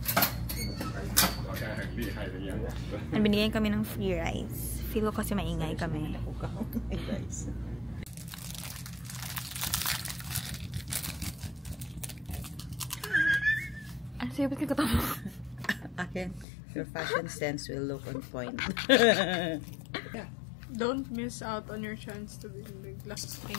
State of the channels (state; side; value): drops out; right; at 16.4 s